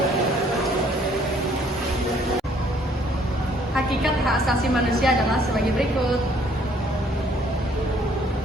Hakikat hak asasi manusia adalah sebagai berikut.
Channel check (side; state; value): both; normal; correlation 0.62